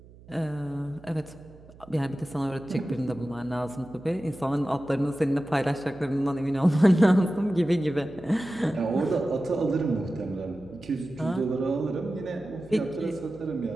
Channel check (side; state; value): right; noise; hum, 22 dB below the sound